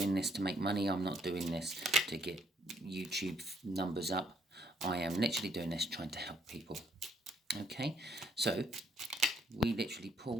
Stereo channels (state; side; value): normal; both; correlation 0.66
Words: this to make money. I'm not doing this to get YouTube numbers up. I am literally doing this trying to help people. Okay, so we literally